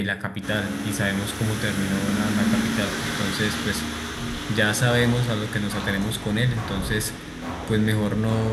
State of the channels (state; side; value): identical; both; correlation 1.00